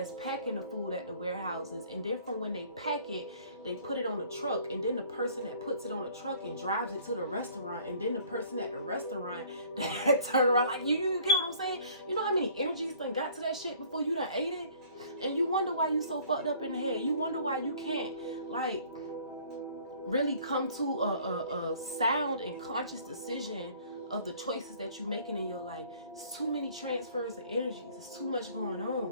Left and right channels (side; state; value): both; inverted; correlation -0.54